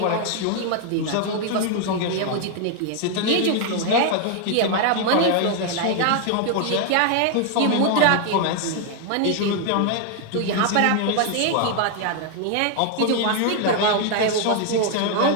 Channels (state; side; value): different; both; correlation 0.00